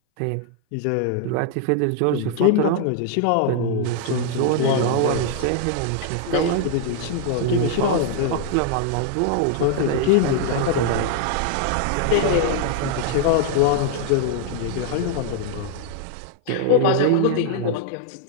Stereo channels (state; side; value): different; both; correlation 0.00